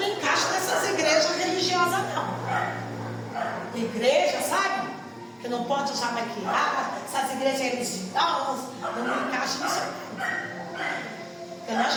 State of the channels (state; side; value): identical; both; correlation 1.00